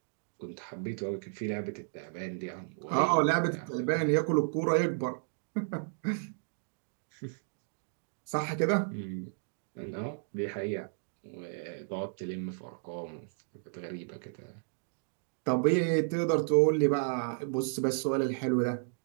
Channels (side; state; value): left; silent; digital silence